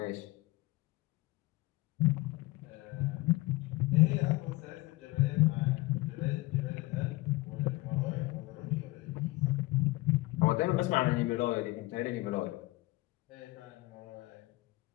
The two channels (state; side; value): quieter; right; 20.6 dB